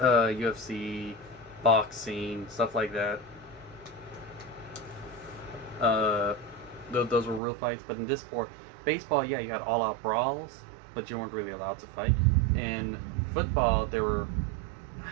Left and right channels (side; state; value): left; drops out; at 7.4 s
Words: boxing, stuff like that. Those were real fights. But in this sport, baseball, yeah, you had all-out brawls, but you weren't really allowed to fight. In football, I